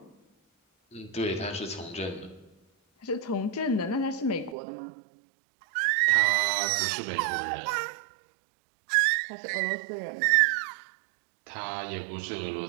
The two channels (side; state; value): left; drops out; at 4.5 s